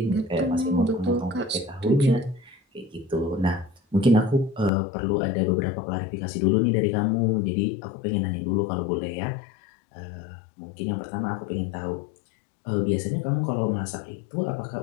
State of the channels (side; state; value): right; drops out; at 4.7 s